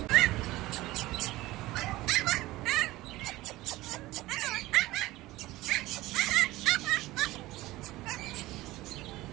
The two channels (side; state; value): left; quieter; 18.2 dB